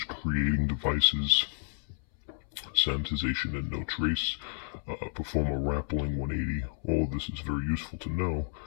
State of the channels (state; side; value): silent; right; 57 dB below the other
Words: creating devices, sanitization and no trace, perform a rappelling 180. All of this is very useful to know,